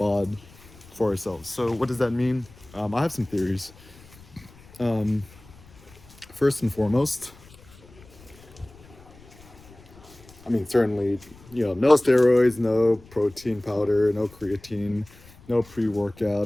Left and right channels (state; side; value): noise; left; rumble, 23 dB below the sound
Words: for ourselves. So what does that mean? I have some theories. First and foremost, certainly, no steroids, no protein powder, no creatine, no